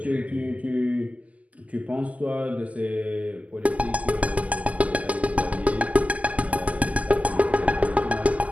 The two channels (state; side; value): late; left; 0.072 ms